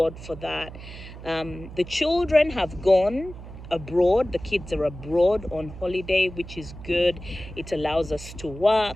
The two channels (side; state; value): right; noise; hum, 14 dB below the sound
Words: for that. The children have gone abroad. The kids are abroad on holiday, which is good. It allows us to